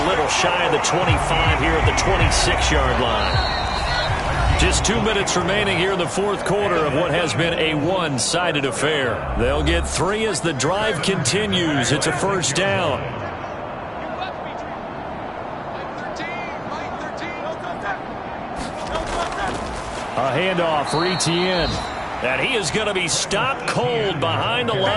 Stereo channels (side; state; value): both; identical; correlation 1.00